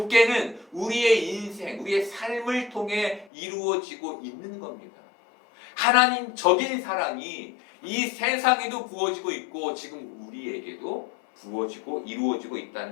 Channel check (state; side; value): drops out; right; at 3.2 s